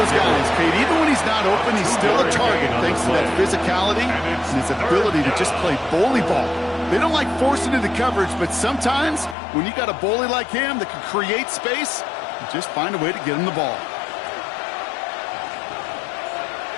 guys, Kate. Even when he's not open, he's still a target thanks to that physicality and his ability to just play bully ball. They don't like forcing into coverage, but sometimes when you got a bully like him that can create space, you just find a way to get him the ball.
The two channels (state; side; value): drops out; right; at 9.3 s